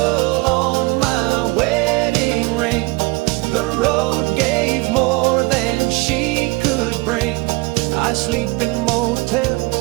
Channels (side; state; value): left; quieter; 25.0 dB